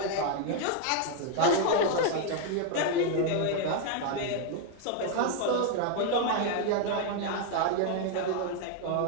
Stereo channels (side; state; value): both; different; correlation 0.01